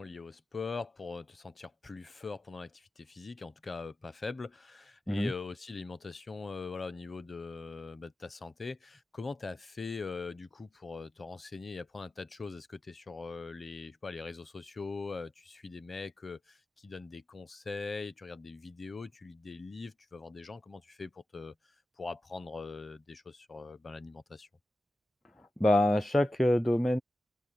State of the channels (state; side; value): normal; both; correlation 0.93